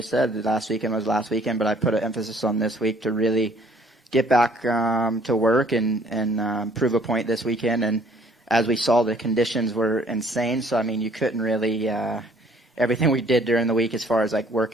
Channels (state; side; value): normal; both; correlation 0.59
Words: said, last weekend was last weekend, but I put an emphasis on this week to really get back to work and prove a point this weekend. And as we saw, the conditions were insane. So, I mean, you couldn't really everything we did during the week as far as, like,